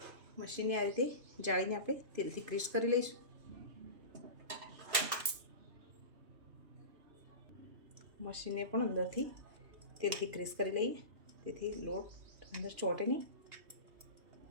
મશીનને આ રીતે જાળીને આપણે તેલથી ગ્રીસ કરી લઈશું. મશીનને પણ અંદરથી તેલથી ગ્રીસ કરી લઈએ તેથી લોટ અંદર ચોંટે નહીં.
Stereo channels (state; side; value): late; left; 3.0 ms